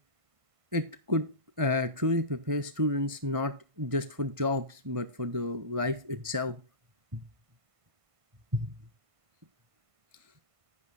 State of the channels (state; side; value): late; left; 1.5 ms